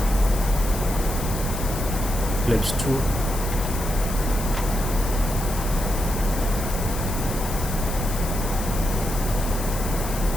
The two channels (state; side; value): noise; left; hiss, 9 dB below the sound